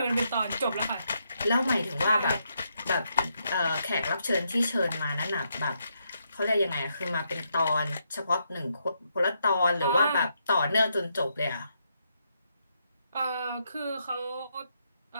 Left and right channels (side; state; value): both; inverted; correlation -0.79